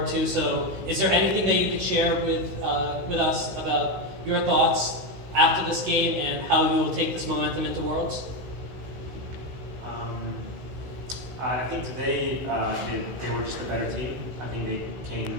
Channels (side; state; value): left; late; 16 ms